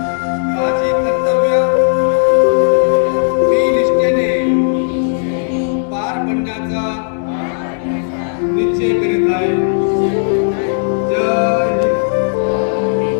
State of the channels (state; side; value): silent; right; digital silence